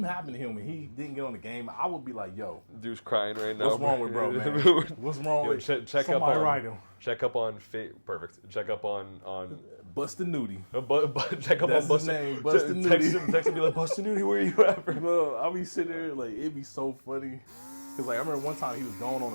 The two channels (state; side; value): inverted; both; correlation -1.00